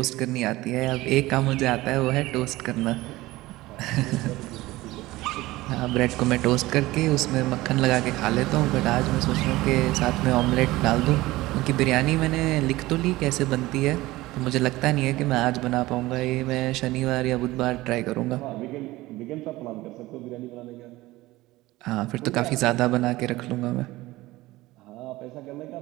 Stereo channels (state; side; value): quieter; left; 18.6 dB